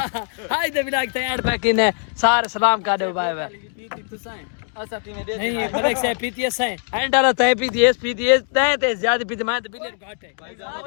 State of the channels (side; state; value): right; silent; 56 dB below the other